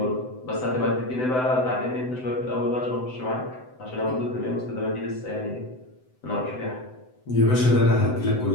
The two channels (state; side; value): late; right; 7.9 ms